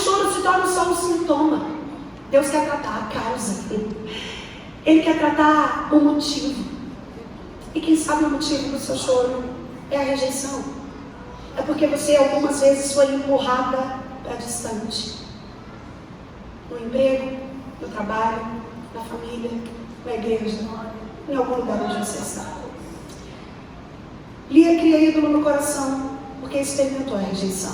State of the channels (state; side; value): identical; both; correlation 1.00